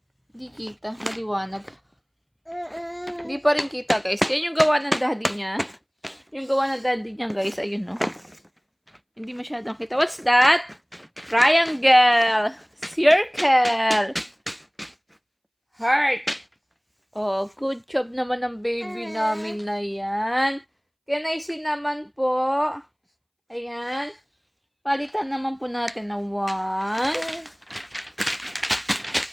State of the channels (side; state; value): both; identical; correlation 1.00